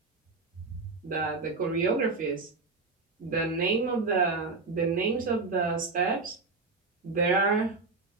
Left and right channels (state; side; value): quieter; left; 4.0 dB